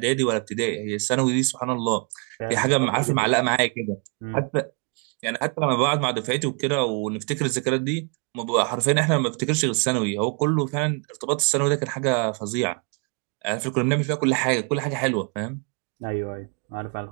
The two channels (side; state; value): left; quieter; 37.1 dB